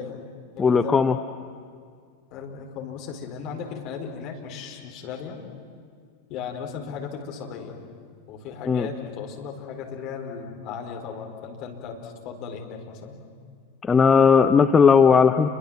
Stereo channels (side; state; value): right; quieter; 5.6 dB